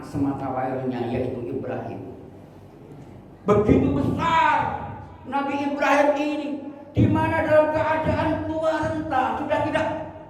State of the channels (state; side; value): identical; both; correlation 1.00